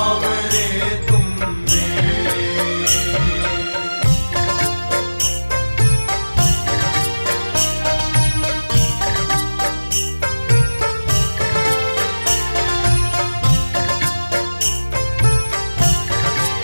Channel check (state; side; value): inverted; both; correlation -1.00